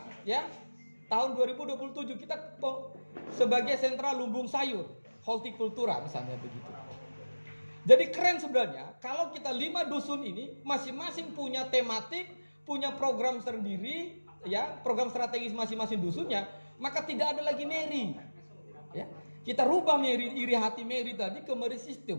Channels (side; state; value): both; inverted; correlation -1.00